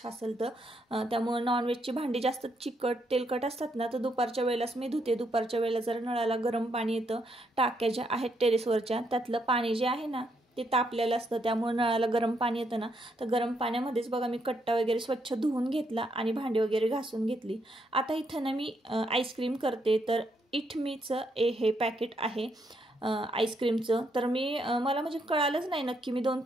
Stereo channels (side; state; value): both; normal; correlation 0.76